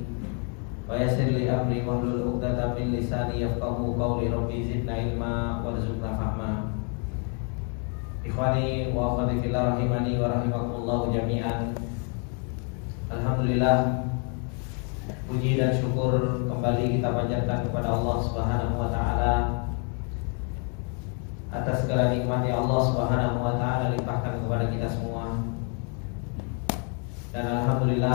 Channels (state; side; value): quieter; right; 39.9 dB